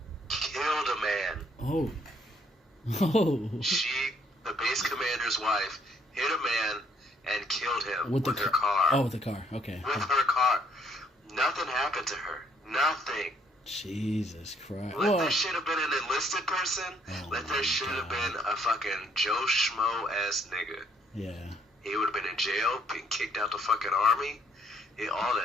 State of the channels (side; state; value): both; normal; correlation 0.66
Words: killed a man. Oh. The base commander's wife hit a man and killed him with her car. Oh, with the car. Okay. With her car. Nothing happened to her. Nothing. Jesus Christ. Let that shit have been an enlisted person. Let that shit have been a fucking Joe Schmo ass nigga. Yeah. He would have been in jail, been kicked out the fucking army. Yeah, all